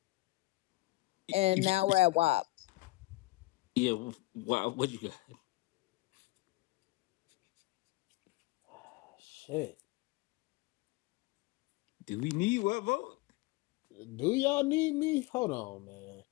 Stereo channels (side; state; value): right; quieter; 20.9 dB